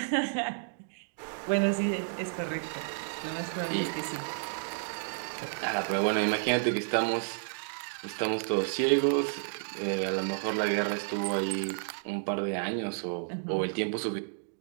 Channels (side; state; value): left; silent; digital silence